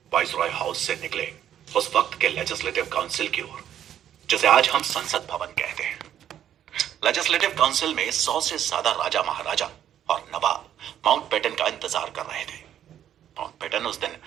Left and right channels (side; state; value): left; quieter; 10.4 dB